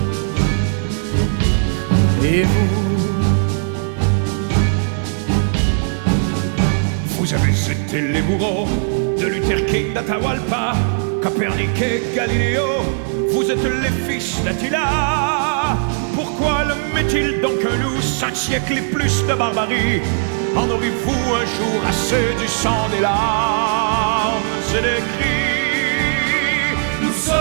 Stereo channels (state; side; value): silent; left; 67 dB below the other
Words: Et vous? Vous avez été les bourreaux de Luther King, d'Atahualpa, Copernic et Galiléo. Vous êtes les fils d'Attila. Pourquoi l'homme est-il donc un loup? 5 siècles et plus de barbarie. En aurez-vous un jour assez du sang, des larmes et des cris? Nous